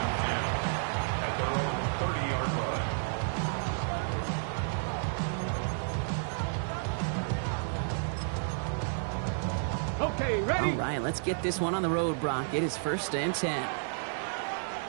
10 at their own 30-yard line. Okay, ready? All right, let's get this one on the road, Brock. It is first and 10.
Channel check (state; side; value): silent; left; digital silence